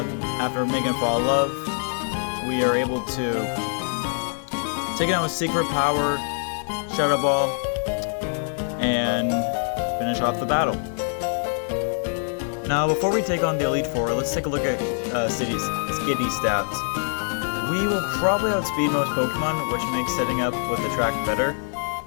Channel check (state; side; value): silent; right; digital silence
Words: making it fall in love, we are able to take it out with Secret Power, Shadow Ball, and finish off the battle. Now, before we take on the Elite Four, let's take a look at Skitty stats. We will probably outspeed most Pokemon, which makes setting up with the track better.